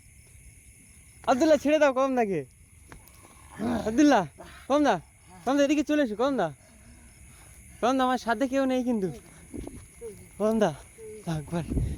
আব্দুল্লাহ ছেড়ে দাও কদম দাকে, আব্দুল্লাহ, কদম দা, কদম দা এদিকে চলে এসো, কদম দা, কদম দা আমার সাথে কেউ নেই কিন্তু, কদম দা একবার,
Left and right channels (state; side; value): identical; both; correlation 1.00